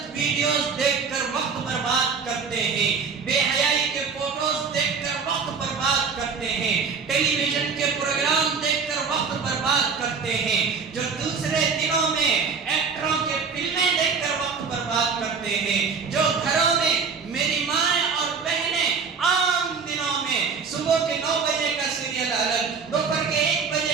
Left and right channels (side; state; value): left; quieter; 5.5 dB